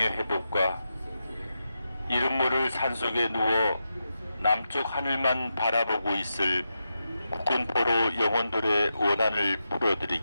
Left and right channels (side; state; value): both; inverted; correlation -0.88